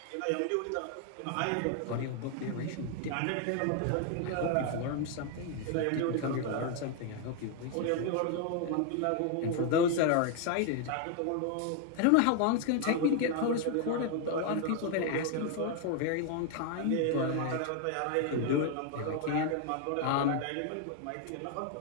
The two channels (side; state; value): both; different; correlation 0.01